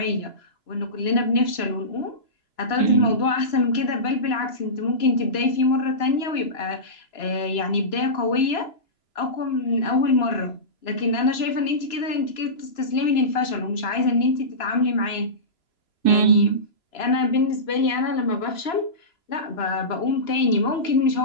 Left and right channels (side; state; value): right; late; 3.0 ms